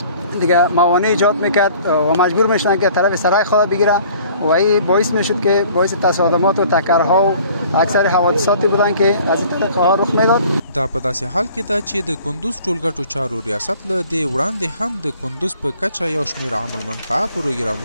دیگه موانع ایجاد میکرد و مجبور میشدن که طرف سرک خود بگیره و این باعث میشد که باعث تصادمات و تکرها و اکثر حوادثاتی بودن که از این طریقه ها رخ میداد. دا په داسې حال کې ده چې د کندوز ټولګټو چارو ریاست له دې وړاندې هم د کندوز په کچه یو شمېر عامل منفعه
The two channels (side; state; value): both; inverted; correlation -0.52